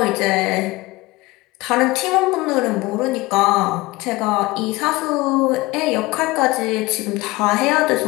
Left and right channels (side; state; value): right; quieter; 21.0 dB